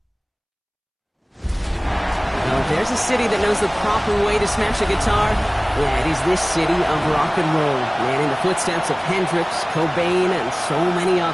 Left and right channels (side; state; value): both; identical; correlation 1.00